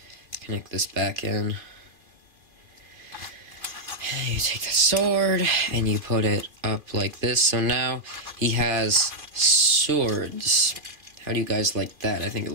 connect this back in. And you take the sword and you put it up like this. So now he has swords. How do you guys like that? I think it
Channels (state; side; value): late; left; 2.4 ms